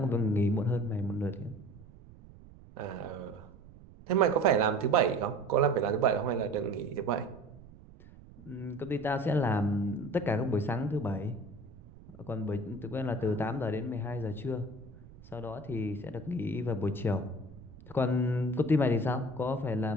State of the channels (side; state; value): right; noise; rumble, 20 dB below the sound